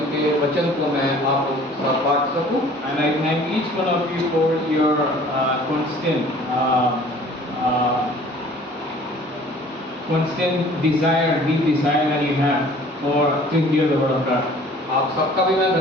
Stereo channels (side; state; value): both; normal; correlation 0.50